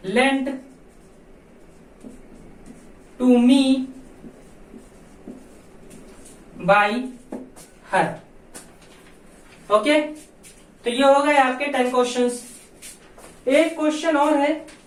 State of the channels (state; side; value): identical; both; correlation 1.00